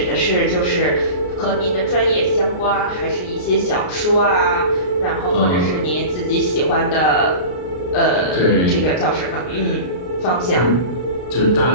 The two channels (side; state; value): right; late; 33 ms